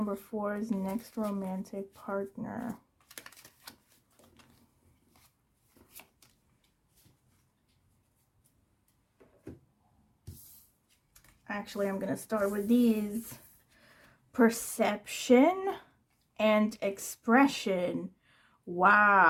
4's next romantic partner? Actually, I'm going to start with these. Perception and expression.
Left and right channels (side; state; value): both; identical; correlation 1.00